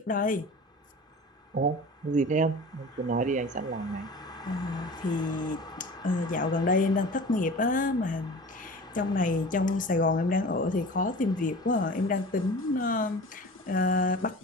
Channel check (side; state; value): both; normal; correlation 0.38